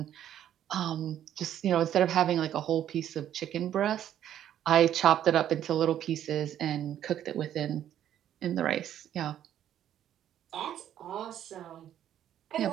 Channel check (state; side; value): quieter; left; 10.8 dB